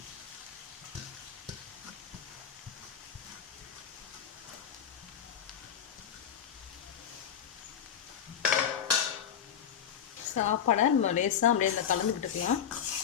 சாப்பாடை நம்ம லேசாக அப்படியே இந்த கலந்து விட்டுக்கலாம்.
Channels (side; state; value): right; quieter; 8.7 dB